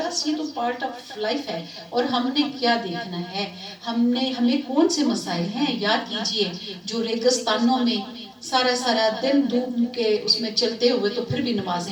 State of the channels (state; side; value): identical; both; correlation 1.00